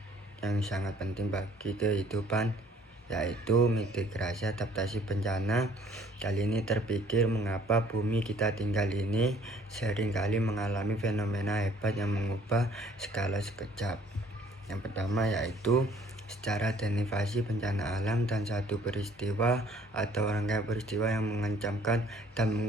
yang sangat penting bagi kehidupan, yaitu mitigasi adaptasi bencana. Kali ini terpikir mengapa bumi kita tinggal ini seringkali mengalami fenomena hebat yang mengubah skala sekejap. Yang pertama yaitu secara derivasi bencana alam dan satu peristiwa atau rangkaian peristiwa yang mengancamkan dan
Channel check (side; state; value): both; normal; correlation 0.58